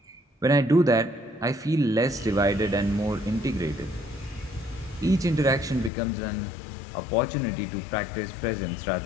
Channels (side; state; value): right; drops out; at 5.9 s